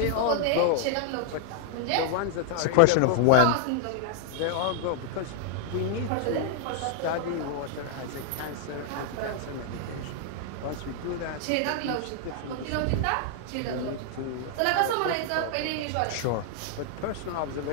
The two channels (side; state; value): both; different; correlation -0.01